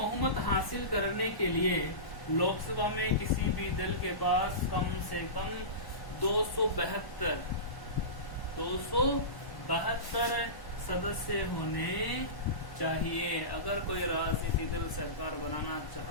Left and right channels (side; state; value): right; late; 1.1 ms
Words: हासिल करने के लिए लोकसभा में किसी भी दल के पास कम से कम 272 सदस्य होने चाहिए। अगर कोई राजनीतिक दल सरकार बनाना